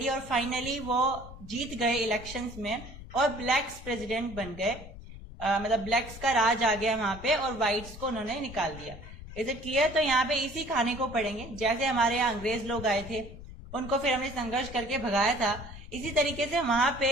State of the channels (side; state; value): left; noise; rumble, 14 dB below the sound